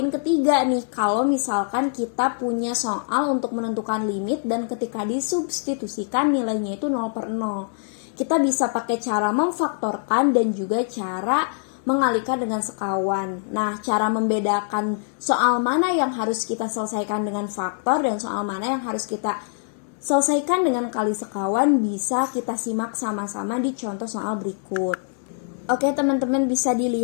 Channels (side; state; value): right; silent; digital silence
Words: ketiga nih. Kalau misalkan kita punya soal untuk menentukan limit dan ketika disubstitusikan nilainya itu 0 per 0. Kita bisa pakai cara memfaktorkan dan juga cara mengalihkan dengan sekawan. Nah, cara membedakan soal mana yang harus kita selesaikan dengan faktor dan soal mana yang harus kita selesaikan dengan kali sekawan bisa kita simak sama-sama di contoh soal berikut. Oke teman-teman, bisa